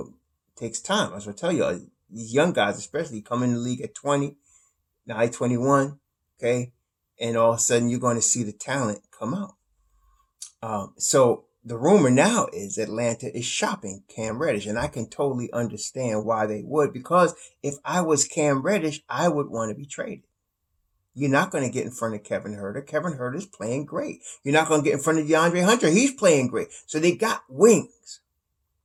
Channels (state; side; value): identical; both; correlation 1.00